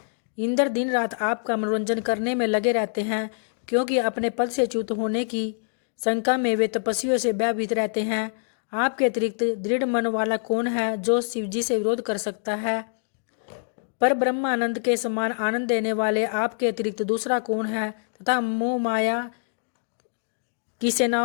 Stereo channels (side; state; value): right; silent; digital silence